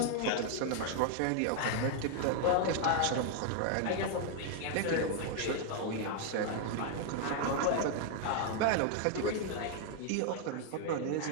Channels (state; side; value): different; both; correlation 0.00